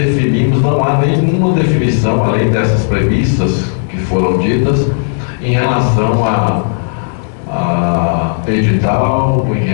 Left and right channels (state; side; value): silent; right; digital silence